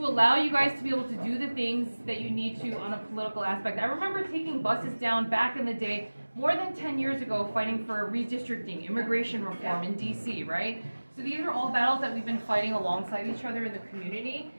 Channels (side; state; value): both; inverted; correlation -1.00